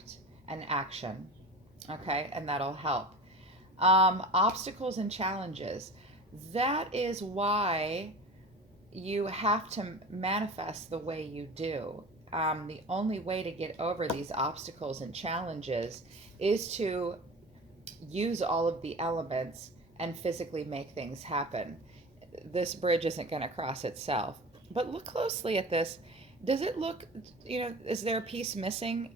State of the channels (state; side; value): normal; both; correlation 0.35